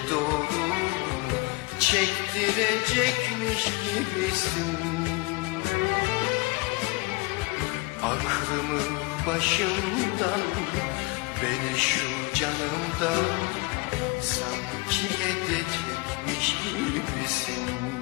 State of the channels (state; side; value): quieter; right; 25.3 dB